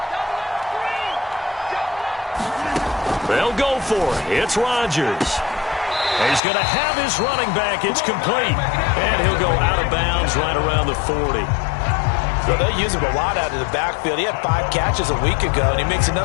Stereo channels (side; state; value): right; drops out; at 6.4 s